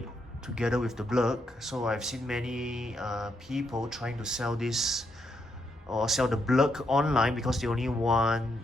together with the blurg. So I've seen many people trying to sell this or sell the blurg online because they only want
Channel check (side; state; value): both; normal; correlation 0.79